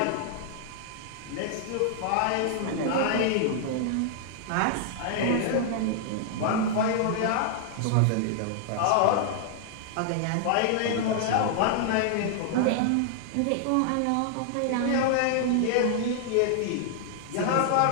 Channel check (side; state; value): both; different; correlation -0.01